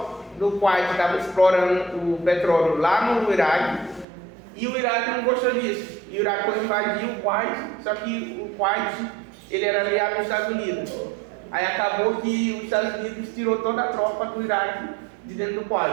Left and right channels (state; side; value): drops out; left; at 4.0 s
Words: do Kuwait estava explorando o petróleo lá no Iraque e o Iraque não gostou disso. E o Iraque foi invadir o Kuwait, só que o Kuwait ele era aliado dos Estados Unidos. Aí acabou que os Estados Unidos tirou toda a tropa do Iraque de dentro do